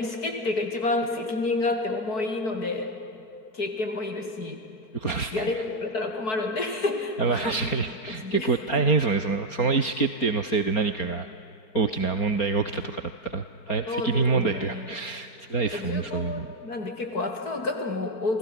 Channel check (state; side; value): late; right; 4.3 ms